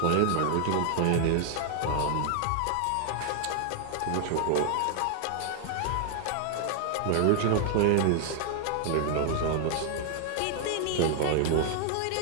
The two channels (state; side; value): different; both; correlation 0.00